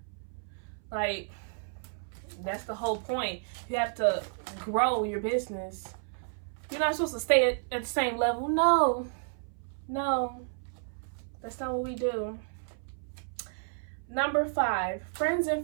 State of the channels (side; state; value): left; silent; 57 dB below the other